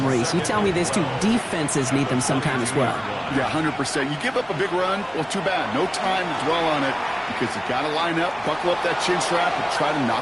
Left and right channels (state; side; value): identical; both; correlation 1.00